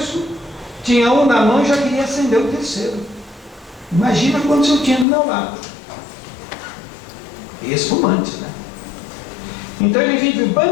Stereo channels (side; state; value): right; drops out; at 5.1 s